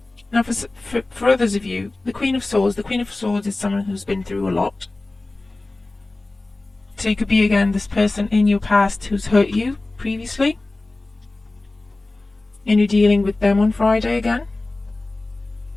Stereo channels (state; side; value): quieter; right; 3.0 dB